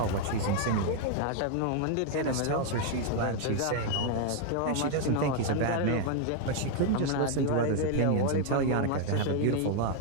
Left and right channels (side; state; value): both; different; correlation 0.00